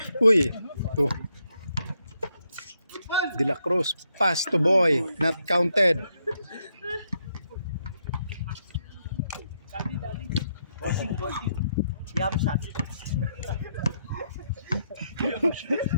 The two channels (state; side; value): inverted; both; correlation -0.78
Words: Uy. Ito. De La Cruz. Pass to boy. Not counted. Bossing. Yum shot.